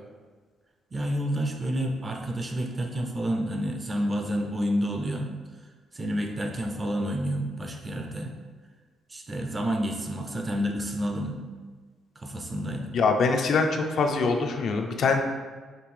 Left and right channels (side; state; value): both; normal; correlation 0.78